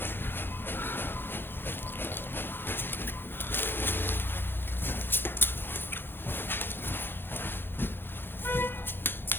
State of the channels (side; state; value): right; late; 0.10 ms